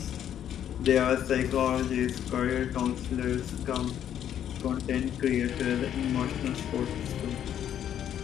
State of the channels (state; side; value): quieter; right; 10.0 dB